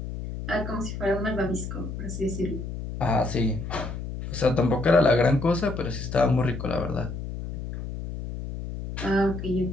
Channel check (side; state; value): left; noise; hum, 7 dB below the sound